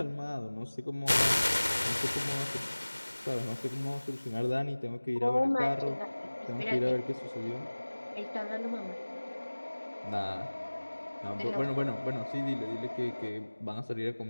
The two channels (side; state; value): both; inverted; correlation -1.00